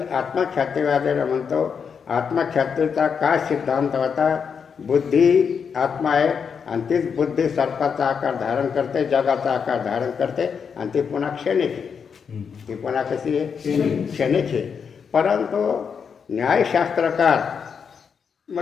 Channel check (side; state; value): right; quieter; 6.5 dB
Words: आत्मख्यातीवादीला म्हणतो. आत्मख्यातीचा काय सिद्धांत होता? बुद्धी आत्मा आहे आणि तीच बुद्धी सर्पाचा आकार धारण करते, जगाचा आकार धारण करते आणि ती पुन्हा क्षणिक आहे. ती पुन्हा कशी आहे? क्षणिक आहे. परंतु न्यायशास्त्रकार